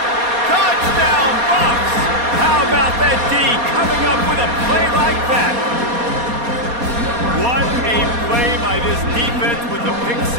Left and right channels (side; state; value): left; late; 4.2 ms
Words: Touchdown, Bucks. How about that D coming up with a play like that? What a play by this defense with the pick